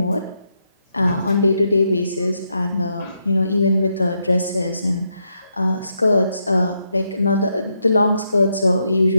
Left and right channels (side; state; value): both; inverted; correlation -0.80